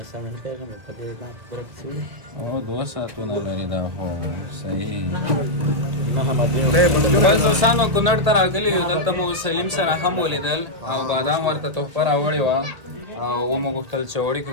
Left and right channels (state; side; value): late; left; 1.8 ms